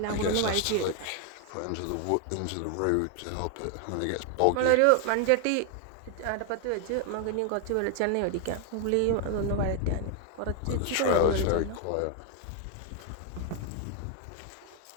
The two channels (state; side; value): different; both; correlation 0.00